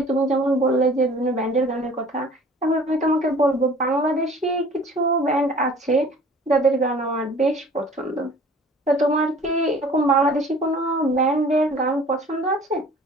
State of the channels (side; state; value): both; normal; correlation 0.48